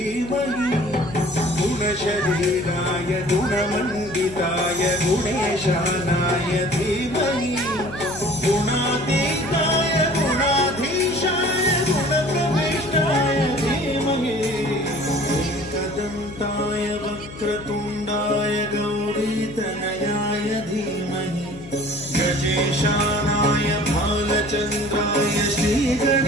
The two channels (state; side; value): noise; left; hum, 15 dB below the sound